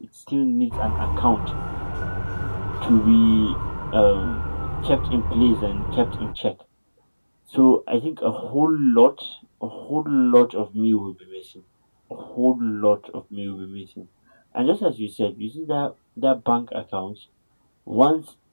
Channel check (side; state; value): both; inverted; correlation -1.00